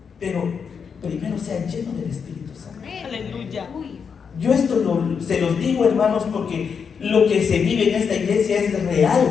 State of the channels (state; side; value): quieter; right; 6.3 dB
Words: Pero primero sea lleno del Espíritu Santo. Aleluya. Yo esto se los digo, hermanos, porque lo que se vive en esta iglesia es